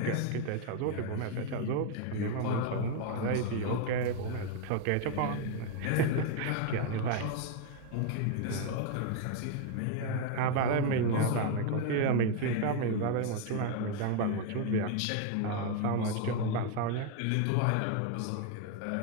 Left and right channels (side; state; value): both; different; correlation 0.01